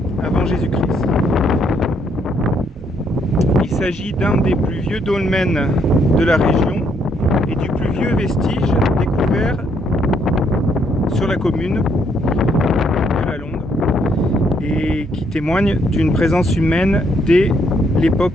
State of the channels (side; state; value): both; normal; correlation 0.71